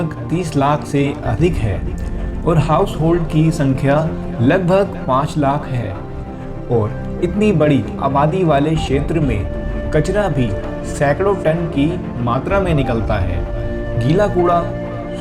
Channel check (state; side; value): identical; both; correlation 1.00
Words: 30 लाख से अधिक है और हाउस होल्ड की संख्या लगभग 5 लाख है, और इतनी बड़ी आबादी वाले क्षेत्र में कचरा भी सैकड़ों टन की मात्रा में निकलता है। गीला कूड़ा,